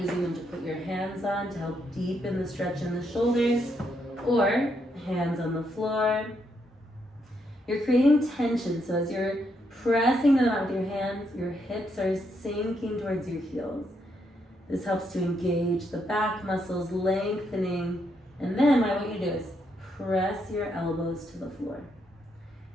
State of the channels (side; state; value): both; normal; correlation 0.77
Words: them to put your hands on to help deepen the stretch in the shoulders, or hands on the floor. You're creating tension, so as you're pressing them out with your hands, your hips are sinking towards your heels. This helps to engage the back muscles, lengthening, and then what I want you to do is press your elbows to the floor.